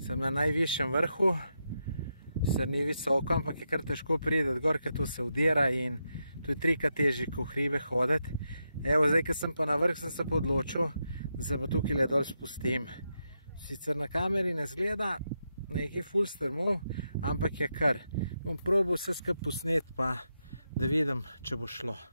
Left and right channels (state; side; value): inverted; both; correlation -0.84